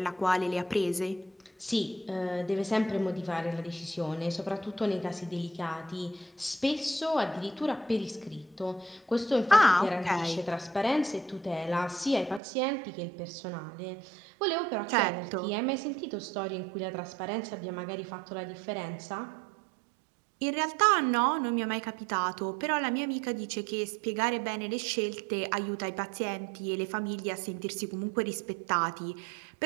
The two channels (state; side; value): drops out; left; at 12.4 s